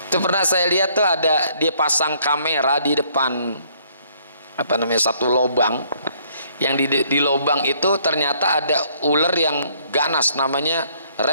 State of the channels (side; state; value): both; inverted; correlation -0.64